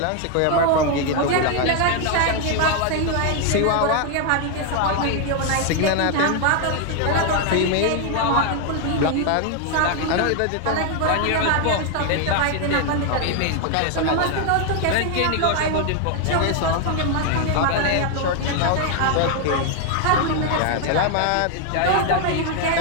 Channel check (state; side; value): different; both; correlation 0.00